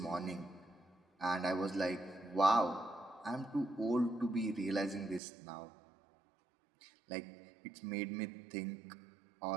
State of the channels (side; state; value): left; drops out; at 5.2 s